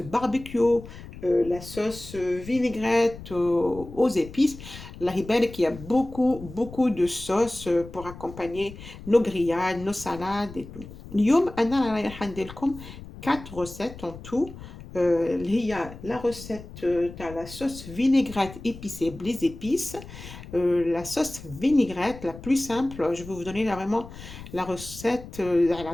la sauce vinaigrette aux épices. الله يبارك, il y a beaucoup de sauces pour accompagner nos grillades, nos salades et tout. اليوم أنا رايحة ندير لكم 4 recettes en tout. Il y a la recette de la sauce vinaigrette épicée, les épices. La sauce vinaigrette la plus simple, je vais vous donner là vraiment la recette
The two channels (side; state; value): left; noise; rumble, 15 dB below the sound